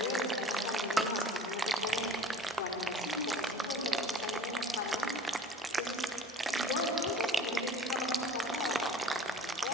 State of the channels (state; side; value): normal; both; correlation 0.45